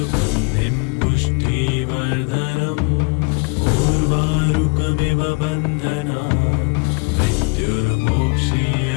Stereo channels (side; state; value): right; quieter; 32.4 dB